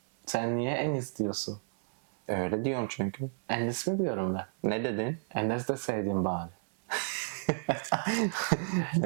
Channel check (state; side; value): silent; left; 57 dB below the other